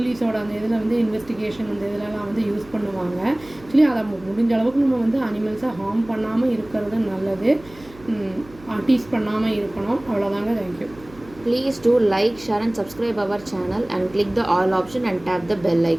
அந்த இதில் வந்து இன்வெஸ்டிகேஷன் அந்த இதிலலாம் வந்து யூஸ் பண்ணுவாங்க. ஆக்சுவலி அதை முடிஞ்ச அளவுக்கு நம்ம வந்து அனிமல்ஸை ஹார்ம் பண்ணாமல் இருக்கிறது நல்லது. டீஸ் பண்ணாமல் இருக்கணும். அவ்வளோதாங்க. Thank you. Please do like, share and subscribe our channel and click the all option and tap the bell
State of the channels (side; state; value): right; noise; hum, 22 dB below the sound